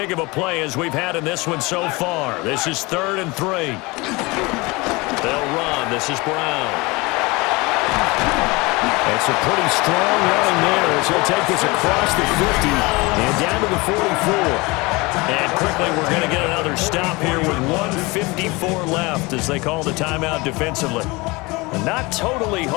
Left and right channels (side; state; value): right; quieter; 24.4 dB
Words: of a play as we've had in this one so far. This is 3rd and 3. They'll run. This is Brown. It's a pretty strong run there as he'll take this across the 50 and down to the 44. And quickly, we're going to get another stop here with 1:54 left as they call the timeout defensively. And not totally